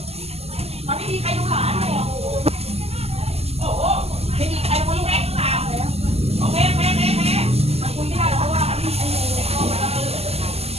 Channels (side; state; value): left; late; 0.29 ms